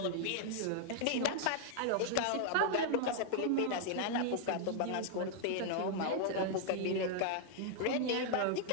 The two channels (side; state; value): both; different; correlation -0.01